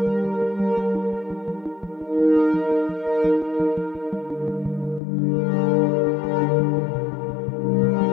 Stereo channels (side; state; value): right; drops out; at 5.0 s